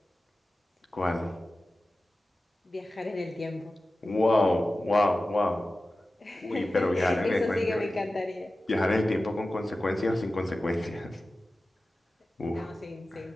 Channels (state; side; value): normal; both; correlation 0.95